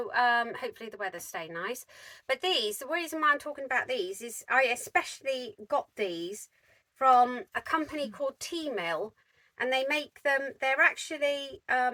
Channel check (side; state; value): both; identical; correlation 1.00